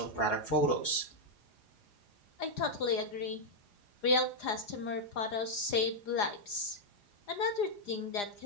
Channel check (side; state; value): right; late; 4.9 ms